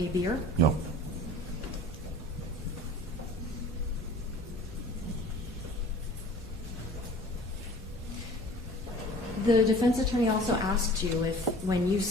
beer? No. The defense attorney also asked you if, when you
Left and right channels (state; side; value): normal; both; correlation 0.45